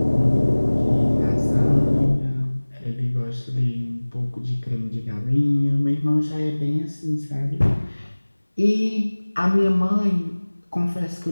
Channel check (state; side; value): inverted; both; correlation -1.00